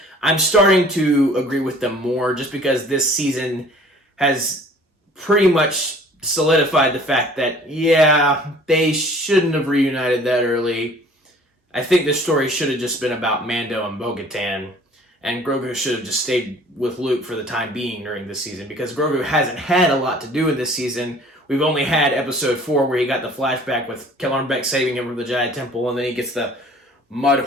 I'm starting to agree with them more just because this season has pretty much solidified the fact that, yeah, they shouldn't have reunited that early. I think this story should have just been about Mando and Bo-Katan, and Grogu should have just stayed with Luke for the time being during this season because Grogu hasn't had a lot to do in this season. We've only had episode 4 where he got the flashback with Kellarn Beck saving him from the Jedi Temple, and then he gets the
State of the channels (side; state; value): both; normal; correlation 0.51